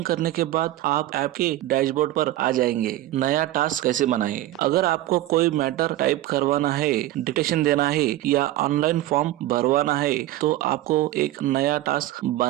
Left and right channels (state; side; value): quieter; left; 15.1 dB